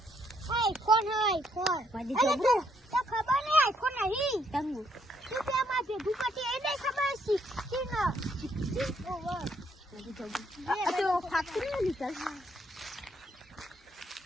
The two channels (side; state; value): both; normal; correlation 0.72